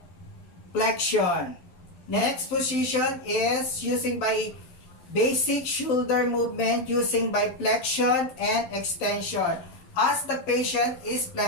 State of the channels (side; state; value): right; late; 11 ms